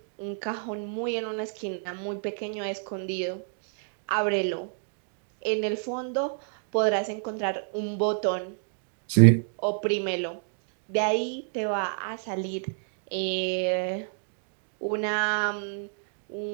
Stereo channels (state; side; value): silent; left; digital silence